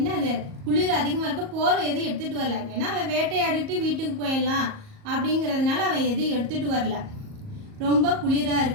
குளிர் அதிகமாக இருக்க போர்வை எதுவும் எடுத்துகிட்டு வரல. ஏன்னா அவன் வேட்டையாடிட்டு வீட்டுக்கு போயிடலாம் அப்படிங்கிறதுனால அவன் எதுவும் எடுத்துகிட்டு வரல. ரொம்ப குளிராக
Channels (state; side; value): late; left; 38 ms